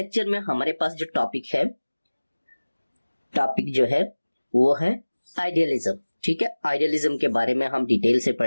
में हमारे पास जो टॉपिक जो है वो है आइडियलिज्म। ठीक है, आइडियलिज्म के बारे में हम डिटेल से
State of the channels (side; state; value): both; inverted; correlation -1.00